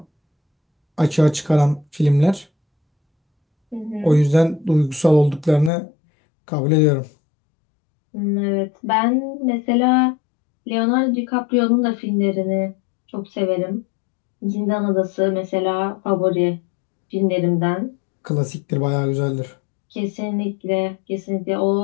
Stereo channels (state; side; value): drops out; right; at 5.7 s